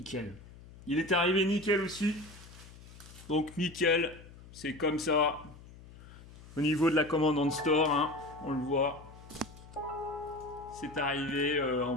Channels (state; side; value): noise; left; hum, 19 dB below the sound